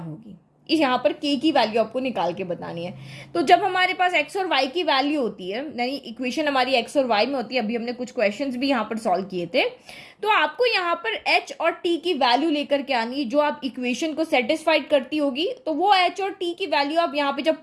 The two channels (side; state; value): both; identical; correlation 1.00